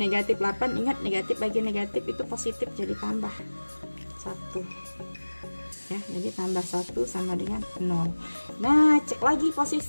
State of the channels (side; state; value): both; inverted; correlation -1.00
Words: 8, ingat negatif bagi negatif itu positif, jadi tambah 1 ya, jadi tambah 1 sama dengan 0. Nah, cek lagi